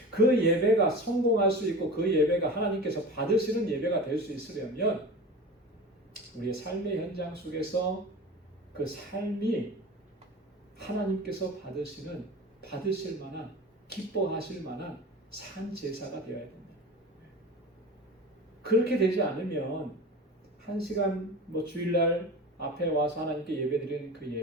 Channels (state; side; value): normal; both; correlation 0.33